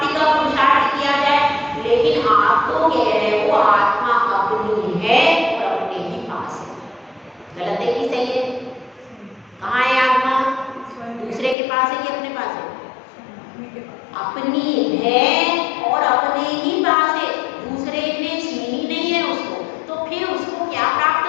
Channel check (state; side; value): drops out; right; at 11.6 s